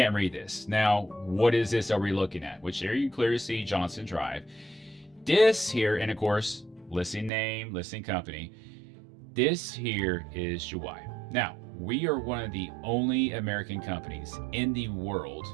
read this. Now, what is this are we looking at? Which there you clearly see Johnson Drive. This here, and of course, listing name, listing company. This here is Juwai. Now, we are one of the only American companies in the world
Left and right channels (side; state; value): left; drops out; at 7.3 s